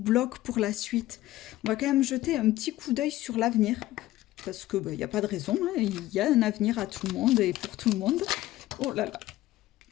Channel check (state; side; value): quieter; right; 16.0 dB